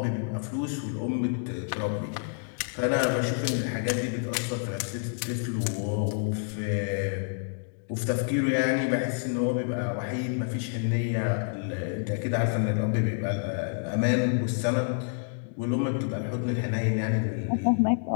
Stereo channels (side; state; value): right; silent; digital silence